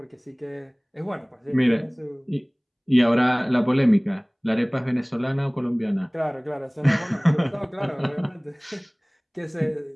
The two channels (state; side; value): identical; both; correlation 1.00